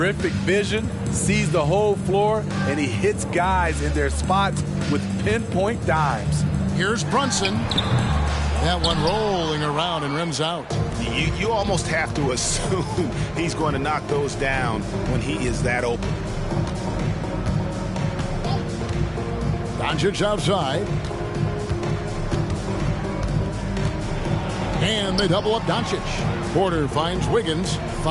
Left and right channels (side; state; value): both; identical; correlation 1.00